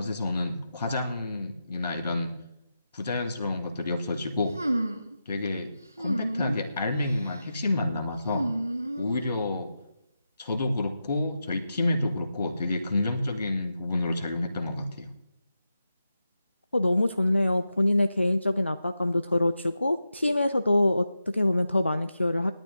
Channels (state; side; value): inverted; both; correlation -0.89